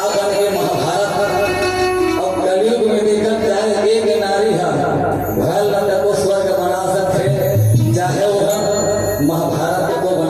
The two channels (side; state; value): both; identical; correlation 1.00